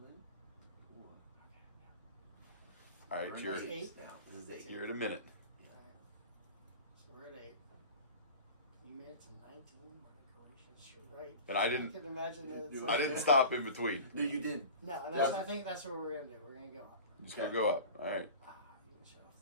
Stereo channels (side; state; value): both; inverted; correlation -0.36